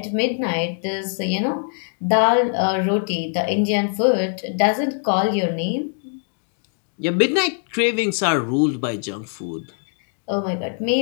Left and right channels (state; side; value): silent; right; 57 dB below the other